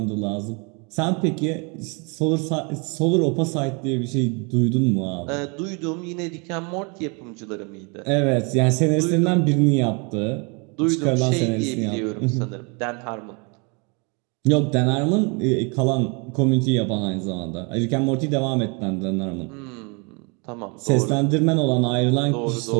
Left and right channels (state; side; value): quieter; left; 32.5 dB